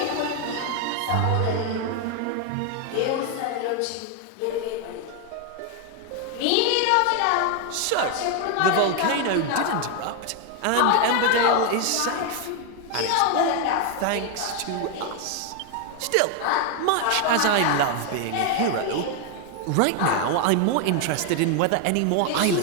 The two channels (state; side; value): different; both; correlation 0.01